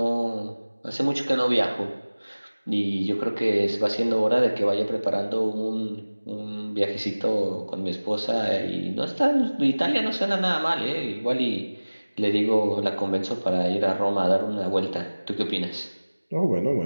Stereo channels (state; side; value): inverted; both; correlation -1.00